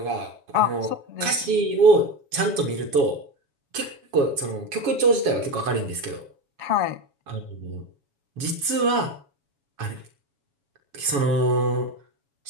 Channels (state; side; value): late; left; 7.2 ms